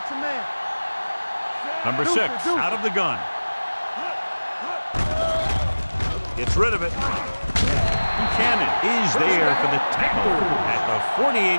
a man. Number 6 out of the gun. Gets rid of it. Buchanan is there for the tackle at the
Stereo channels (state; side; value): inverted; both; correlation -1.00